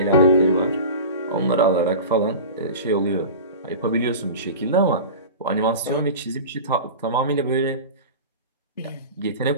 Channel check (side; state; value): both; inverted; correlation -0.32